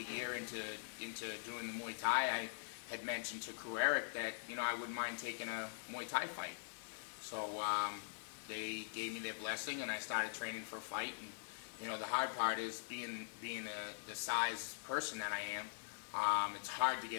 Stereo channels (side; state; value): right; silent; digital silence